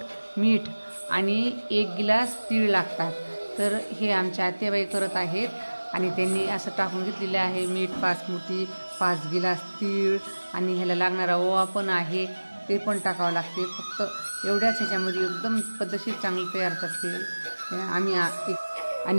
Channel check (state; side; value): inverted; both; correlation -1.00